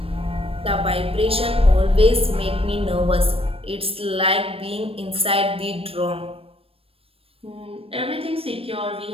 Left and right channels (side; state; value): left; late; 0.28 ms